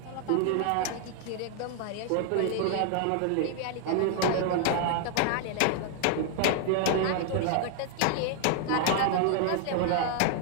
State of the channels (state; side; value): different; both; correlation 0.00